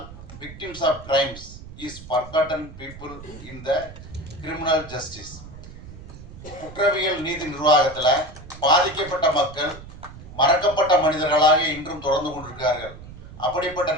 victims of crimes is forgotten people in the criminal justice. குற்றவியல் நீதி நிர்வாகத்தில் பாதிக்கப்பட்ட மக்கள் மறக்கப்பட்ட மனிதர்களாக இன்றும் தொடர்ந்து கொண்டிருக்கிறார்கள். அப்படிப்பட்ட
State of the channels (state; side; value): noise; right; rumble, 15 dB below the sound